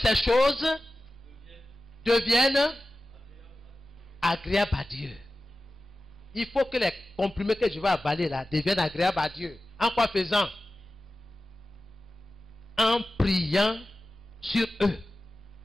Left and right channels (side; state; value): both; normal; correlation 0.95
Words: choses deviennent agréables à Dieu. Il faut que les comprimés que je vais avaler là deviennent agréables à Dieu. En quoi faisant? En priant sur eux.